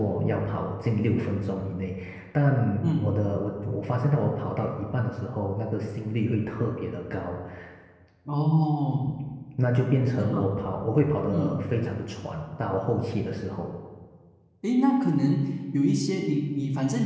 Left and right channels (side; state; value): both; identical; correlation 1.00